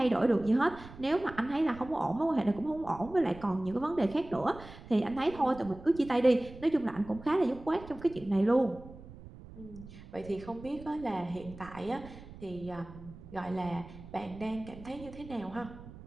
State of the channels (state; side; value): noise; right; rumble, 17 dB below the sound